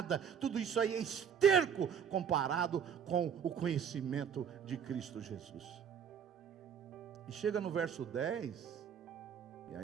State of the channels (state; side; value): quieter; left; 7.8 dB